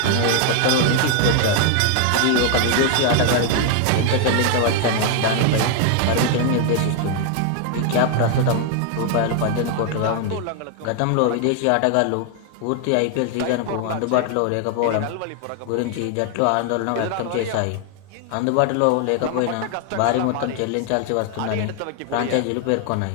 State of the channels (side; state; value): both; different; correlation 0.00